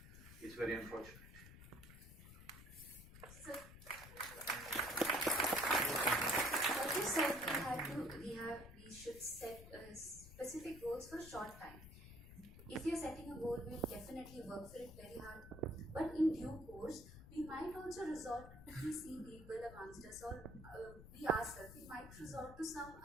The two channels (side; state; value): left; noise; rumble, 15 dB below the sound